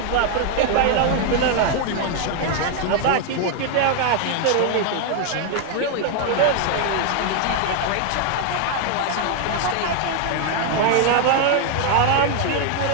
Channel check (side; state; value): both; different; correlation 0.00